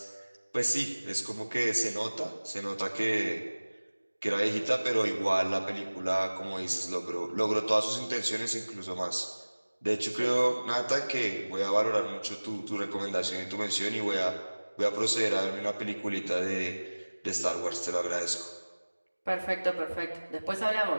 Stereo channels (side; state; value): both; inverted; correlation -1.00